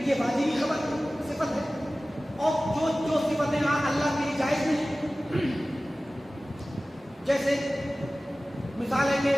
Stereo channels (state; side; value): normal; both; correlation 0.97